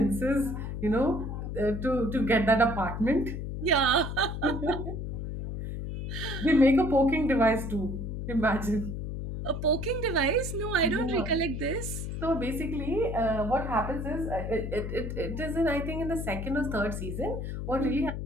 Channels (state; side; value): noise; left; hum, 5 dB below the sound